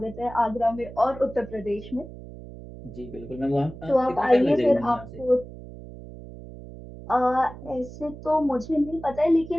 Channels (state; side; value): noise; right; hum, 15 dB below the sound